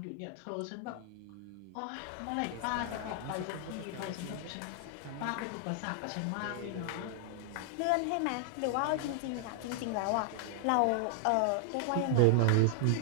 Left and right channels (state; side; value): different; both; correlation 0.00